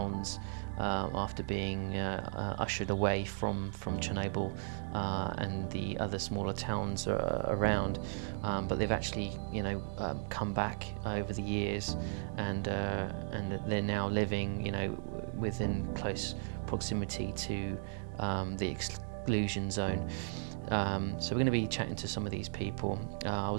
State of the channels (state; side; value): silent; left; digital silence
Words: after being ushered away from Chernobyl and the other smaller towns around, but they've actually come back over the years, and they're now living within close proximity to the exclusion zone. So we're going to be chatting to some of these people. I